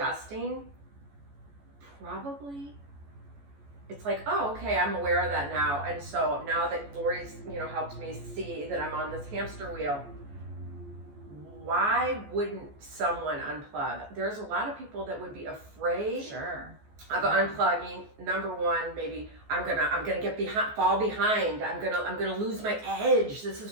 probably, it's like, oh, okay, I'm aware of that now. And so now that Lori's, helped me see that I'm on this hamster wheel, why wouldn't someone unplug? There's a lot of people that would be afraid Sure. of unplugging. Number one, maybe I'm gonna get fall behind. I'm gonna lose my edge. This is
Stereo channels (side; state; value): left; late; 14 ms